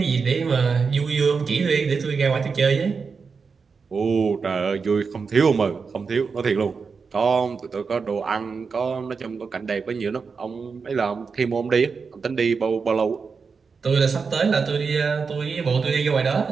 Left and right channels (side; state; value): left; quieter; 5.2 dB